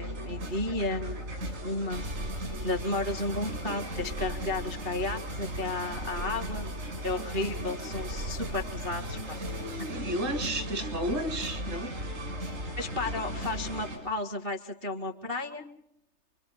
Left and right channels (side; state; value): left; late; 3.3 ms